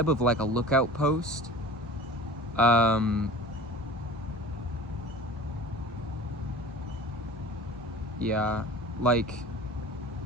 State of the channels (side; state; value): both; normal; correlation 0.40